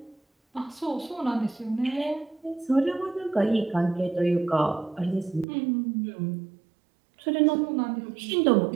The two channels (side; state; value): left; drops out; at 5.5 s